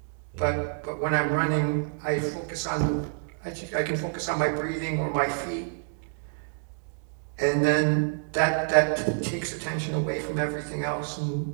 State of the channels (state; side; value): silent; left; digital silence